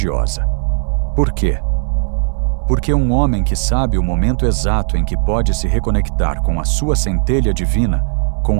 Por quê? Porque um homem que sabe o momento exato em que pode se reconectar com a sua centelha divina,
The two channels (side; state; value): left; silent; digital silence